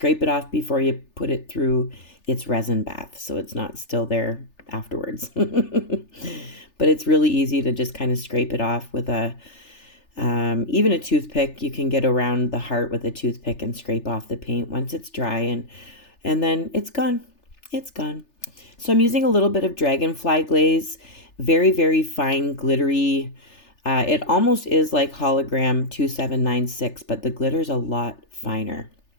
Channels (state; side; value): late; right; 3.4 ms